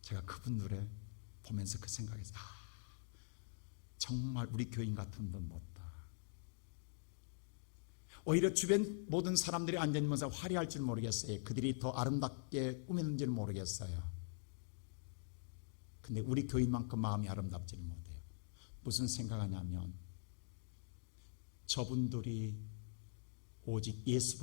제가 그분들을 보면서 그 생각했어요. 정말 우리 교인 같은 분 못다. 오히려 주변 모든 사람들이 앉아있으면서 화려할 줄 모르겠어요. 그들이 더 아름답게 꾸몄는지는 모르겠어요. 근데 우리 교인만큼 마음이 아름답지는 못해요. 무슨 생각하냐면 저분들이 오직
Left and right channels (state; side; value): silent; right; digital silence